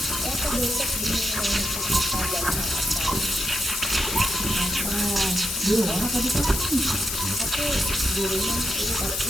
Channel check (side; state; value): left; noise; hiss, 2 dB below the sound